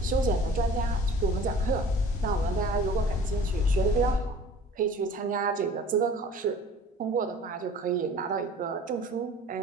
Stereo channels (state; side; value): normal; both; correlation 0.46